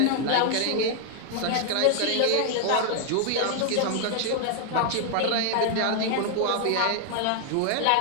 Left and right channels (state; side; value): different; both; correlation 0.00